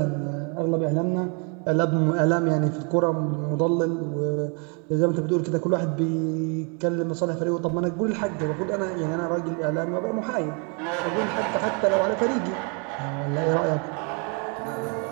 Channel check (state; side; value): quieter; left; 36.2 dB